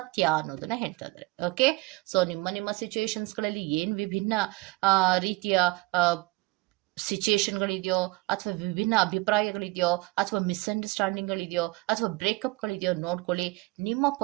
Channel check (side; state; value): left; quieter; 23.6 dB